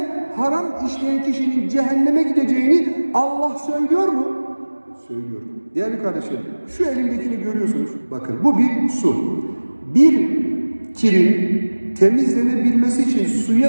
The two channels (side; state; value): both; inverted; correlation -1.00